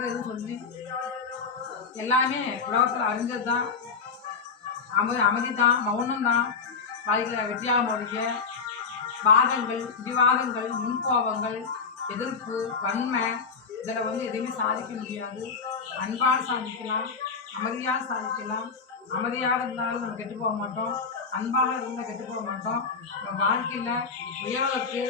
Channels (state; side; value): quieter; right; 5.2 dB